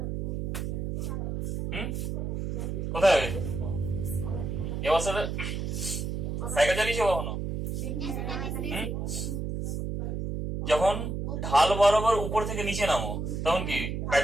কোথায় হয় এই অবস্থাটা? সাইকেল চালিয়েছো কখনো? যখন ঢাল বরাবর উপর থেকে নিচে নামো তখন কি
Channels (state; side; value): noise; right; hum, 3 dB below the sound